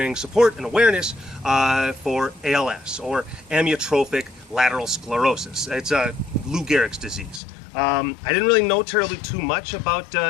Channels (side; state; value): right; drops out; at 7.4 s